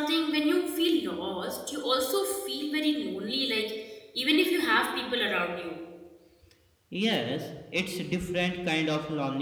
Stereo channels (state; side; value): identical; both; correlation 1.00